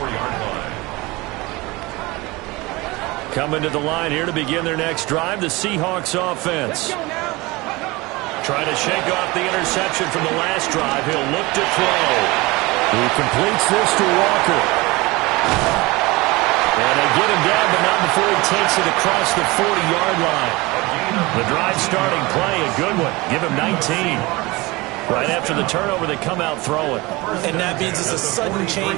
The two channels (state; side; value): quieter; left; 22.8 dB